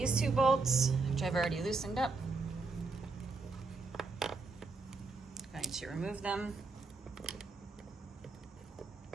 two bolts, which I've already loosened up. I'm going to remove them.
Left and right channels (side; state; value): left; quieter; 3.9 dB